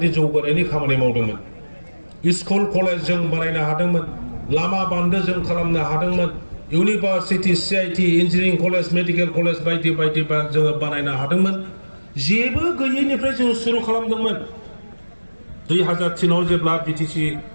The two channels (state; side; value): inverted; both; correlation -1.00